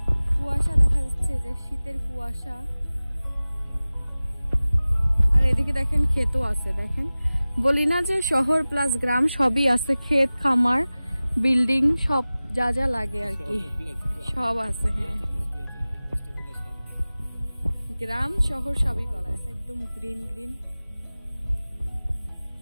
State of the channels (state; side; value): inverted; both; correlation -0.98